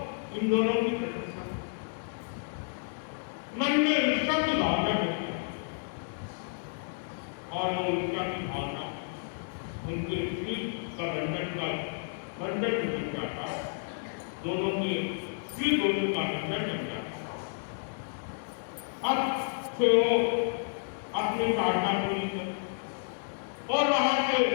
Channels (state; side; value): silent; right; digital silence